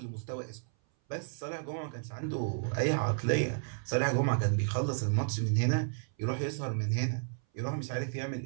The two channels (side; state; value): left; silent; 56 dB below the other